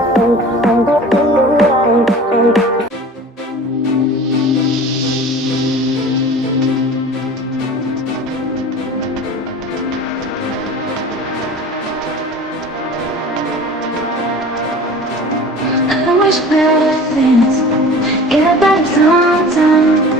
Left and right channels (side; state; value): both; normal; correlation 0.40